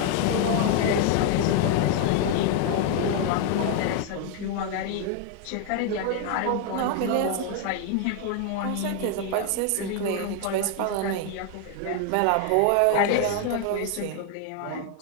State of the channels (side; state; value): both; different; correlation 0.01